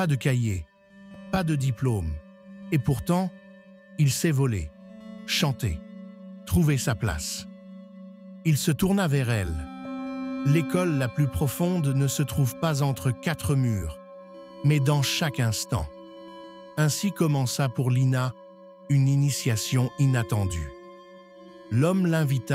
de cahier, pas de diplôme, et pourtant, il sait voler, chanter, trouver sa place. » Il se tourna vers elle. L'école la plus profonde ne se trouve pas entre quatre murs, mais dans chaque instant. Ainsi commença pour Lina une initiation inattendue. L'homme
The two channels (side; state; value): both; identical; correlation 1.00